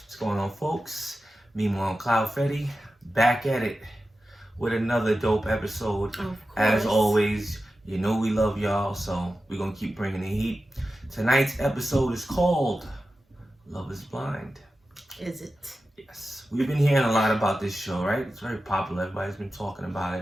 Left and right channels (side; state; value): both; normal; correlation 0.93